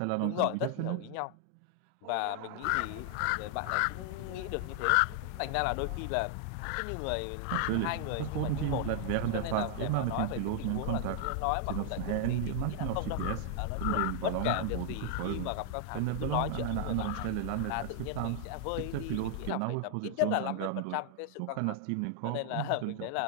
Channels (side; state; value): both; different; correlation 0.00